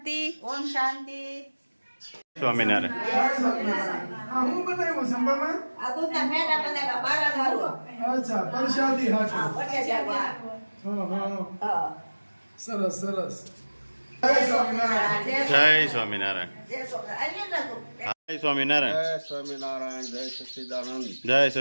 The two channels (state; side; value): inverted; both; correlation -1.00